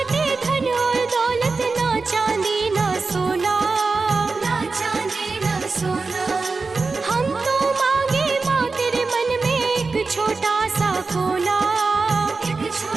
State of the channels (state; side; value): quieter; left; 4.1 dB